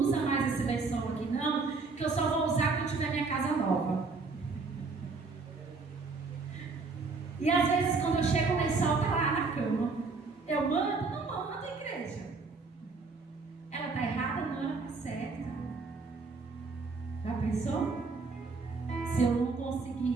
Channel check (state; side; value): quieter; left; 4.2 dB